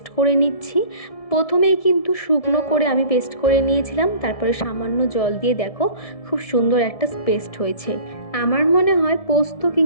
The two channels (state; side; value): late; right; 1.7 ms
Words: করে নিচ্ছি। প্রথমেই কিন্তু শুকনো করে আমি পেস্ট করে নিয়েছিলাম, তারপরে সামান্য জল দিয়ে দেখো খুব সুন্দর একটা পেস্ট হয়েছে। আমার মনে হয় পোস্ত